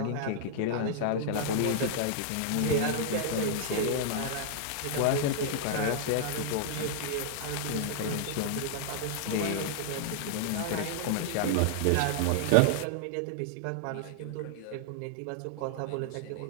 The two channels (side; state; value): both; different; correlation -0.01